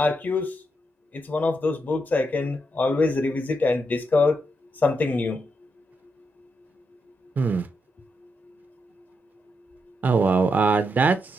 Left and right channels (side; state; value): both; normal; correlation 0.82